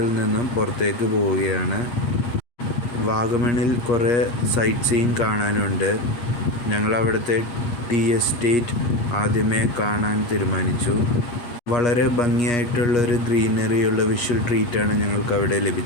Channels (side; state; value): right; late; 8.4 ms